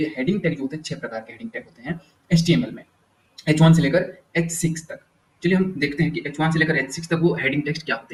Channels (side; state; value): both; identical; correlation 1.00